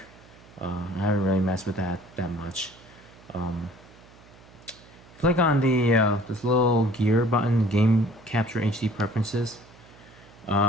I haven't really messed with that much. Click on the this little gear button, Game Capture HD Preferences.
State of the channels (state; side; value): noise; right; hum, 24 dB below the sound